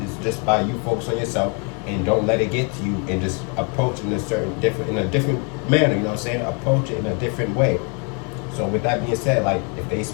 It's just by you focus on yourself and don't let it get to you, and just approach it in a different manner. You know what I'm saying? Approach it in a different way. So with that being said, like if they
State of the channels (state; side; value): quieter; right; 35.9 dB